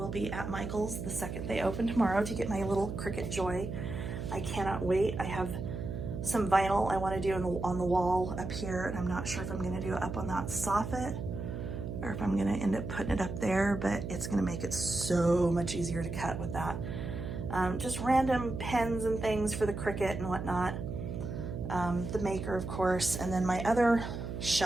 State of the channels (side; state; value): right; noise; hum, 6 dB below the sound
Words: be at Michael's the second they open tomorrow to get my little Cricut Joy. I cannot wait. I have some vinyl I want to do on the wall up here, and I'm not sure if I'm going to do it up on that soffit or if I'm going to end up putting it up there, but it's going to make it so much easier to cut with that. Just random pens and things for the Cricut and whatnot. The Maker, of course, and then my other